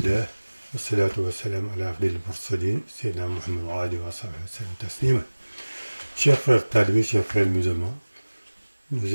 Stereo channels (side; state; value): both; inverted; correlation -1.00